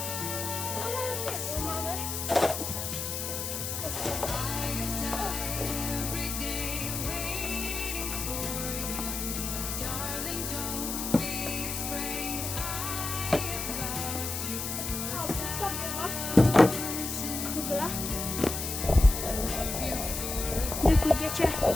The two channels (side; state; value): left; noise; hiss, 4 dB below the sound